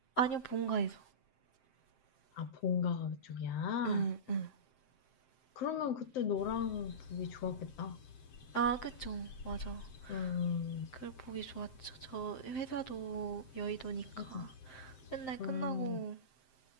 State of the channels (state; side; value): late; right; 7.7 ms